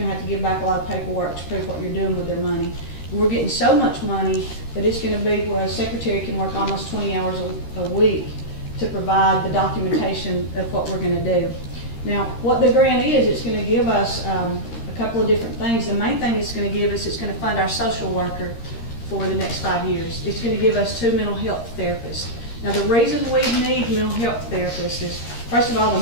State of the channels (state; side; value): late; right; 13 ms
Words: to have to give back a lot of paperwork to prove what you're doing with their money. We're getting so much money that it's going to be where a secretary can work almost 20 hours a week to provide the documentation of what we're going to do. Now, what the grant is, it's going to give us a couple of different things. The main thing it's going to give us, it's going to fund our social worker for the next 5 years. It's going to give us 2 mental health therapists. Now, the reason we need mental health therapists is, first of all,